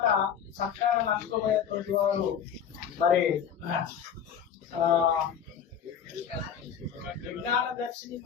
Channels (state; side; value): quieter; right; 8.1 dB